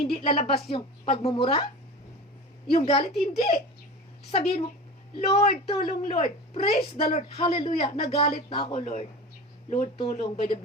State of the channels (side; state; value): both; normal; correlation 0.32